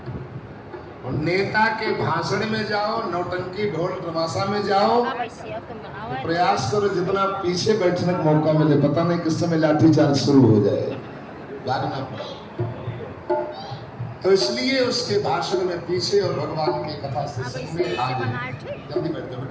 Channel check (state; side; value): identical; both; correlation 1.00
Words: और नेता के भाषण में जाओ, नौटंकी ढोल तमाशा में जाओ तो प्रयास करो जितना पीछे बैठने का मौका मिले, पता नहीं किस समय लाठीचार्ज शुरू हो जाए, भागना पड़े। तो इसलिए उसके भाषण में पीछे और भगवान की कथा से में आगे। जल्दी बैठो